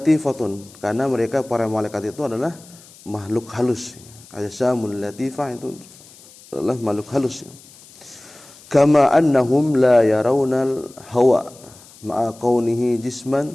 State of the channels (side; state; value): left; noise; hiss, 23 dB below the sound